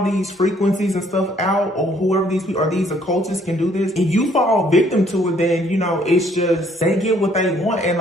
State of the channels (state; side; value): normal; both; correlation 0.64